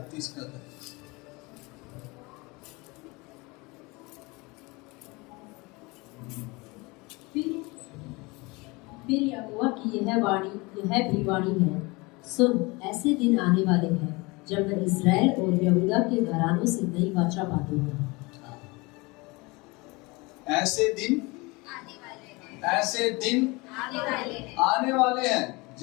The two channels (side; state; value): right; quieter; 25.2 dB